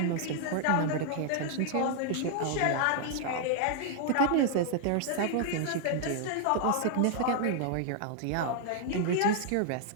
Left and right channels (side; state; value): both; different; correlation 0.00